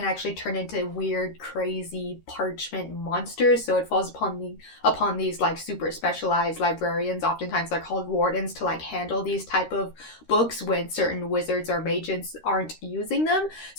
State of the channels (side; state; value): right; late; 13 ms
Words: actually turn into weird, crazy parchment monsters. So it falls upon these like super specialized librarians. Oftentimes they're called wardens, to like handle these type of books when certain wizards or mages aren't using them.